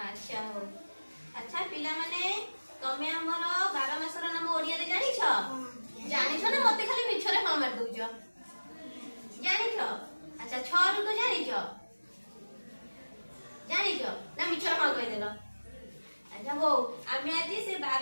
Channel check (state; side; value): inverted; both; correlation -1.00